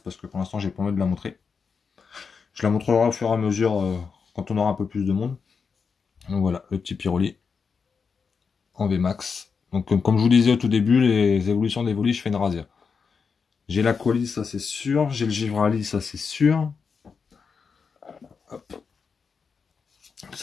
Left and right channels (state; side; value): quieter; right; 5.6 dB